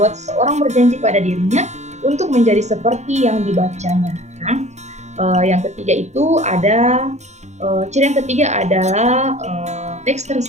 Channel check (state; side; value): late; left; 0.33 ms